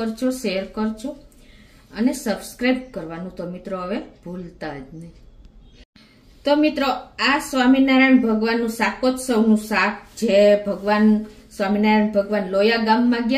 શેર કરજો અને સબસ્ક્રાઇબ કરવાનું તો મિત્રો હવે ભૂલતા જ નહીં। તો મિત્રો આ સ્વામિનારાયણ ભગવાનનું શાકોત્સવનું શાક જે ભગવાન સ્વામિનારાયણ ભગવાન લોયા ગામમાં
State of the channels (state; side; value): identical; both; correlation 1.00